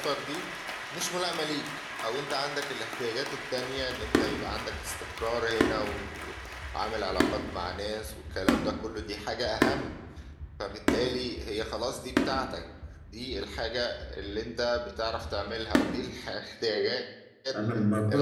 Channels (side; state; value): both; identical; correlation 1.00